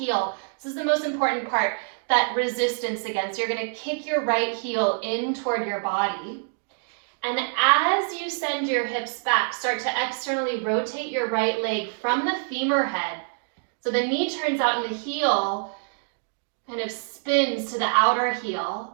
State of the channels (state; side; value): silent; left; digital silence